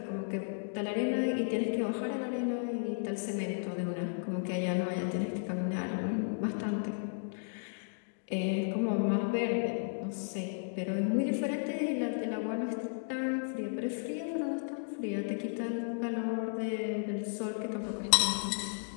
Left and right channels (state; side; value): silent; right; digital silence